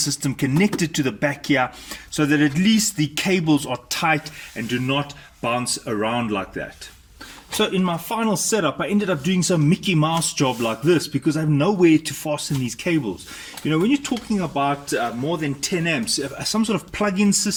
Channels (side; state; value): both; identical; correlation 1.00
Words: connected to the back here, so that at least the cables are tight and do not bounce around like that. So in my final setup, I ended up doing some Mickey Mouse job like this, because I have nowhere to fasten these cables. When you're talking about more than 10 amps, some sort of plug-in